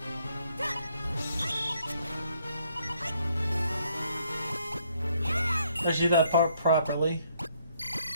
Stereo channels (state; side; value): inverted; both; correlation -0.69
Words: I do that part properly.